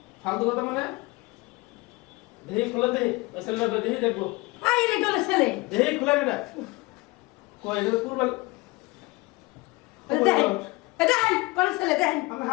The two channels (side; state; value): right; quieter; 23.7 dB